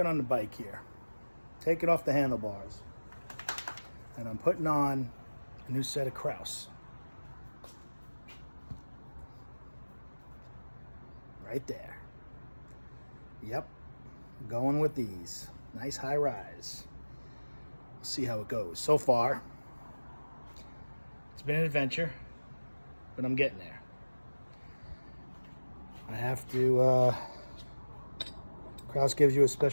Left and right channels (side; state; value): both; inverted; correlation -1.00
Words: on the bike here, taking off the handlebars, and I'm putting on a new set of Kraus. Right there. Yep, going with these. Nice high rise. We'll see how it goes. So far, it's been an adventure, but I'm getting there. I have to, Kraus gives you a